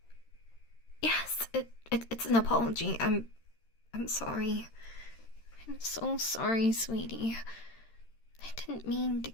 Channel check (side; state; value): right; late; 13 ms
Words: Yes, it's an apology. I'm sorry. I'm so sorry, sweetie. I didn't mean to